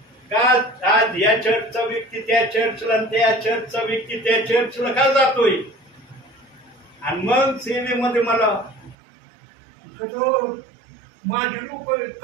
का आज या चर्चचा व्यक्ती त्या चर्चला, त्या चर्चचा व्यक्ती त्या चर्चला का जातोय? आणि मग सेवेमध्ये मला माझे लोक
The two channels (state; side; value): drops out; left; at 9.0 s